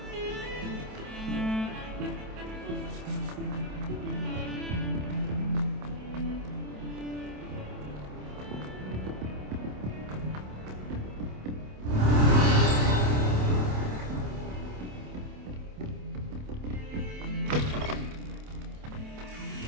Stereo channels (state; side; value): late; left; 27 ms